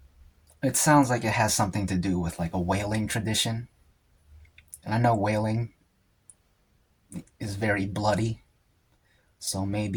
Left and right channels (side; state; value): both; identical; correlation 1.00